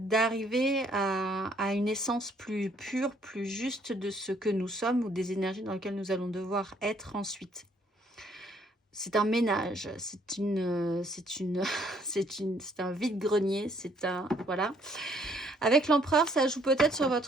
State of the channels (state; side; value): normal; both; correlation 0.65